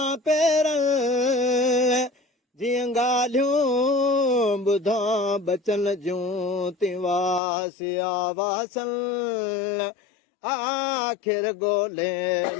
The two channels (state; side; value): drops out; right; at 7.4 s